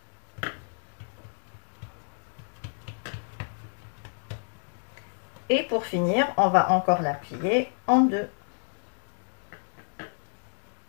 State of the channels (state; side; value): silent; right; digital silence